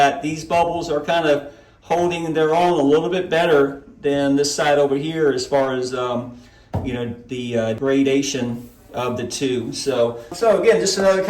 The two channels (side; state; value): both; identical; correlation 1.00